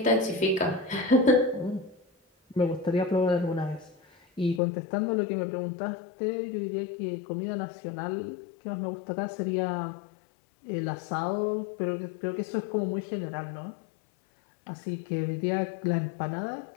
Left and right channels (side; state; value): right; drops out; at 4.6 s